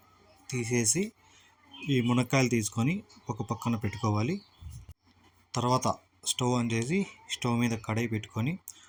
తీసేసి ఈ మునక్కాయలు తీసుకొని ఒక పక్కన పెట్టుకోవాలి. తర్వాత స్టవ్ ఆన్ చేసి స్టవ్ మీద కడాయి పెట్టుకొని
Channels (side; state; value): both; identical; correlation 1.00